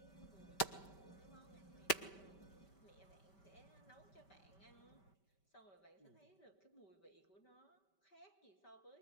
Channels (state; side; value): late; right; 5.2 ms